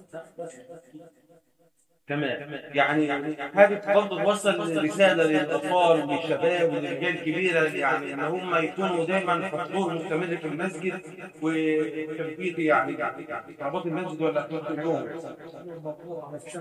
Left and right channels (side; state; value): both; identical; correlation 1.00